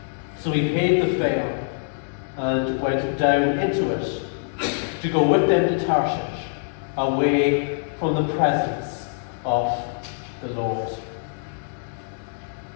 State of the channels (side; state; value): right; silent; digital silence